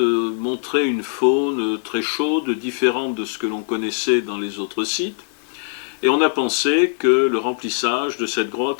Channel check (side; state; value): right; silent; digital silence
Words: une faune très chaude, différente de ce que l'on connaissait dans les autres sites, et on a pensé que le remplissage de cette